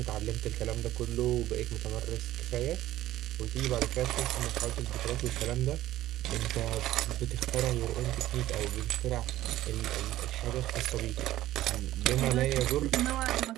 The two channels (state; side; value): quieter; left; 14.7 dB